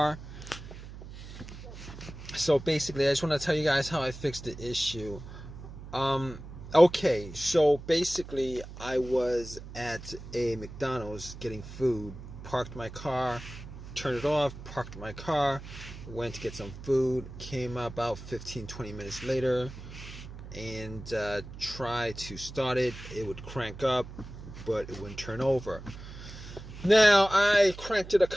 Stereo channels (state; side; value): noise; right; hum, 13 dB below the sound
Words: So basically, I just want to tell you guys how I fixed the issue. Okay, so basically, I was at a McDonald's getting food, parked my car, turned it off, parked my car, went to get some food, came about 15-20 minutes later, and try to start it. It would crank up, but it wouldn't turn over. Now, I cranked it a